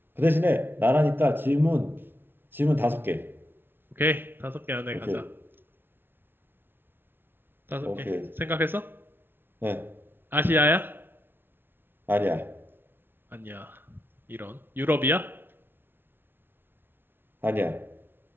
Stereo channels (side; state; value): left; late; 0.10 ms